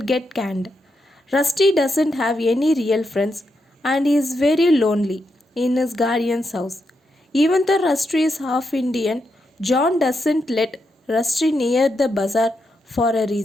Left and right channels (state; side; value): normal; both; correlation 0.83